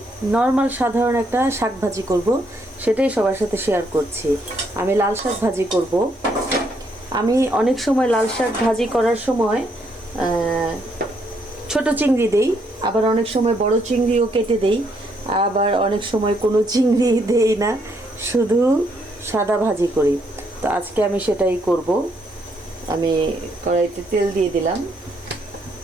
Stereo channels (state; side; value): normal; both; correlation 0.73